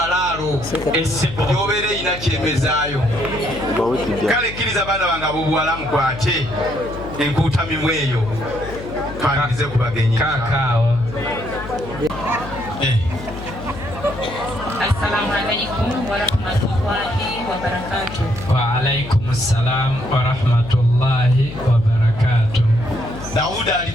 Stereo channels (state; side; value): noise; left; hum, 12 dB below the sound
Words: Yobeera erina kyemezaayo. Kale kkiriza baana bange ab'obuwala mukwate enkuutamimu eyo twanirize ku bagenyi. Kaakaawa. Assalamu alaikum warahmatullahi wabarakatuh. Wa alaikum assalam warahmatullahi wabarakatuh. Dauda ali